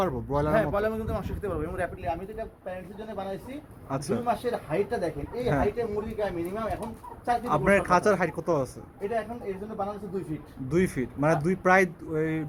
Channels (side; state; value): both; identical; correlation 1.00